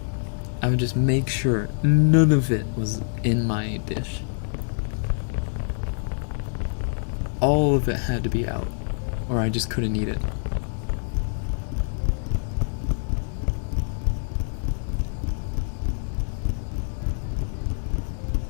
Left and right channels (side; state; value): right; silent; 61 dB below the other